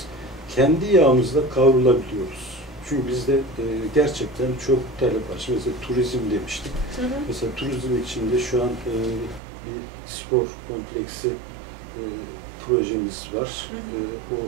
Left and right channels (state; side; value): drops out; left; at 9.4 s